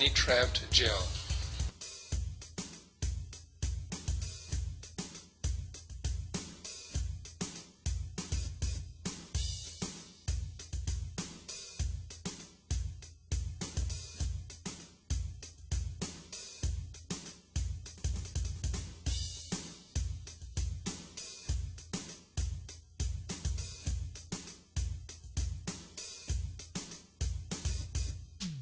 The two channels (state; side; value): identical; both; correlation 1.00